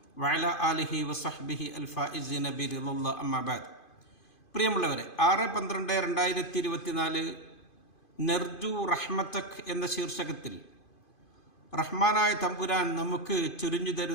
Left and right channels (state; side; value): late; right; 2.5 ms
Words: വഅലാ ആലിഹി വസഹ്ബിഹി അൽഫായിസീന ബിറിളില്ലാഹി അമ്മാ ബഅദ്. പ്രിയമുള്ളവരെ, 6/12/2024 നർജു റഹ്മതക് എന്ന ശീർഷകത്തിൽ റഹ്മാനായ തമ്പുരാൻ നമുക്ക് ചൊരിഞ്ഞു